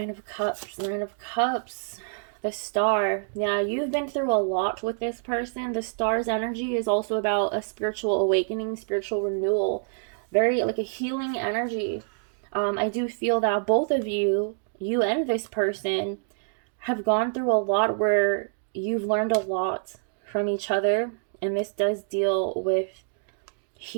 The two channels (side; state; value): left; silent; digital silence